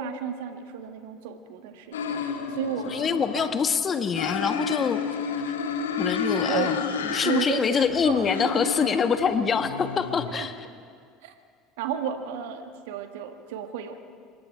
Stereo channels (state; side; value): quieter; right; 4.0 dB